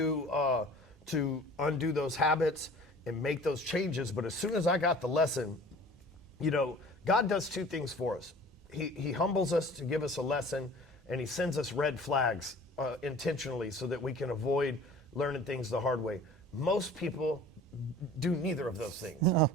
undo those habits and make those changes. But as soon as I got the lesson, you know, God does two things for us. He humbles us to give us a lesson, and he sends us red flags intentionally so that we can avoid learning things the hard way. Most people do neither of those things. No.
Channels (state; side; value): normal; both; correlation 0.45